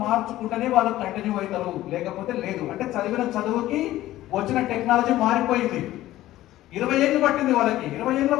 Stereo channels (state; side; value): quieter; right; 15.1 dB